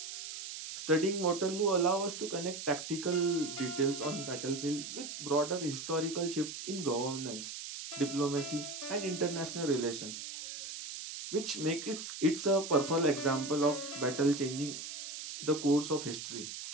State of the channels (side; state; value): right; noise; hiss, 8 dB below the sound